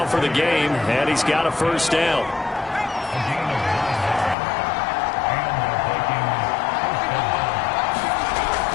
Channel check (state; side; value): drops out; right; at 4.4 s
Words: for the game, and he's got a first down.